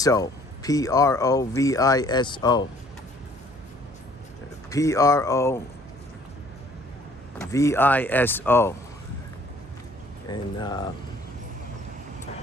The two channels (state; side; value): normal; both; correlation 0.58